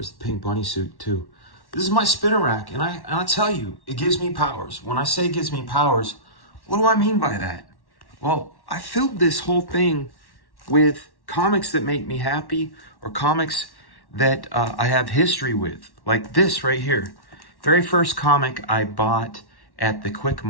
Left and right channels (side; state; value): right; late; 1.1 ms